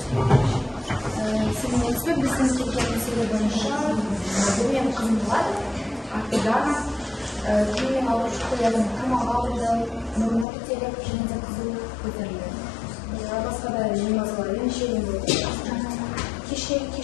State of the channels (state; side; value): drops out; right; at 10.5 s